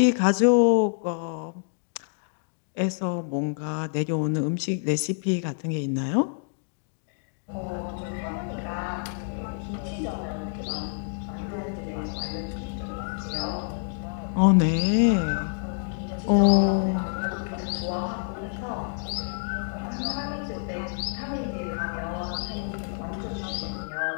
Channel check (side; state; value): right; silent; digital silence